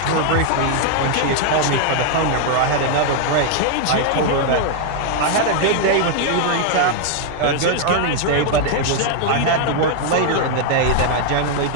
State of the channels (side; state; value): both; different; correlation 0.00